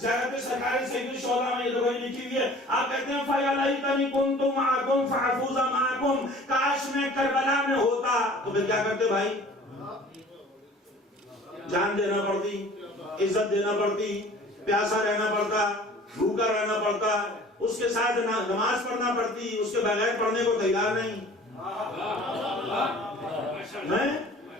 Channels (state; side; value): normal; both; correlation 0.47